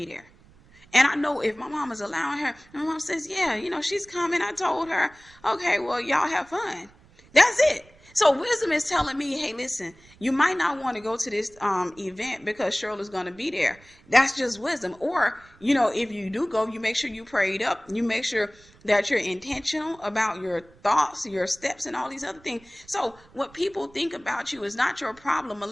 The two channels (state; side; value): noise; right; rumble, 27 dB below the sound